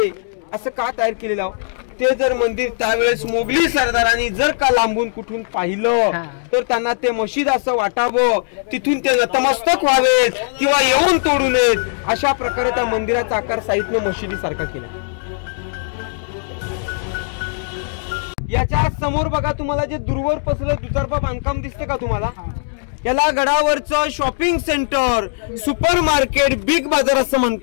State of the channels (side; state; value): right; silent; digital silence